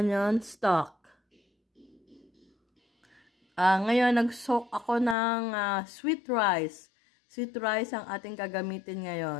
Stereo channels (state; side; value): drops out; right; at 5.2 s